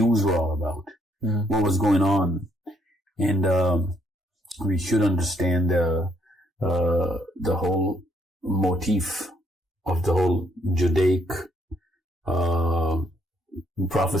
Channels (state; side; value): normal; both; correlation 0.70